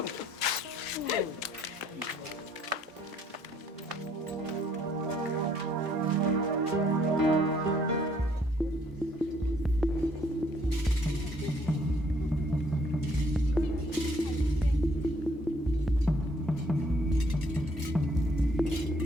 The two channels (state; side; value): normal; both; correlation 0.65